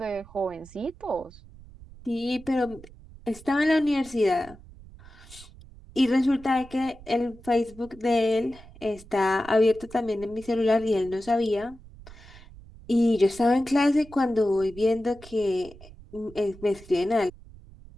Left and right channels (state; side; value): noise; right; rumble, 20 dB below the sound